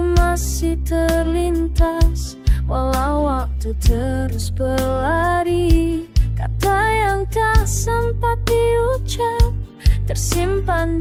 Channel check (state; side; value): identical; both; correlation 1.00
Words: masih terlintas, walau waktu terus berlari. Kata yang tak sempat diucap tersimpan